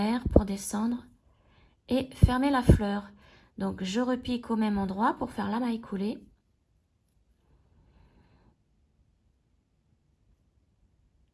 pour descendre et fermer la fleur. Donc, je repique au même endroit pour faire la maille coulée.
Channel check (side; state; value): both; identical; correlation 1.00